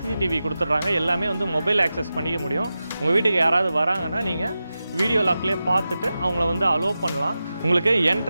கொடுத்துட்றாங்க. எல்லாமே வந்து மொபைல் ஆக்சஸ் பண்ணிக்க முடியும். உங்கள் வீட்டுக்கு யாராவது வராங்கன்னா நீங்கள் வீடியோ லாக்லேயே பார்த்துட்டு அவங்கள வந்து அலோவ் பண்ணலாம். உங்களுக்கு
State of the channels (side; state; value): both; inverted; correlation -0.93